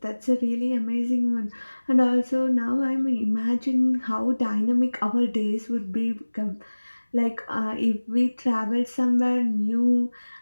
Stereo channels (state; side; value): inverted; both; correlation -1.00